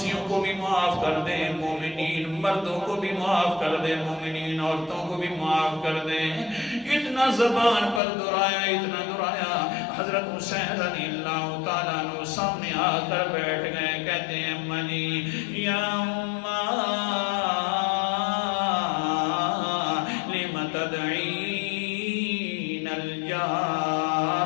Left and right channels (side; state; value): right; drops out; at 8.0 s